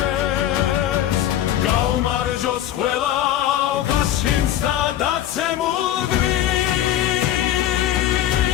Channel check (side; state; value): right; quieter; 12.0 dB